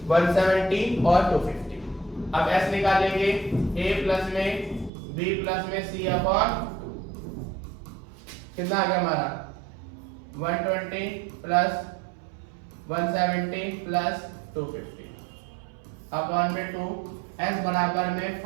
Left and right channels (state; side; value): drops out; left; at 4.9 s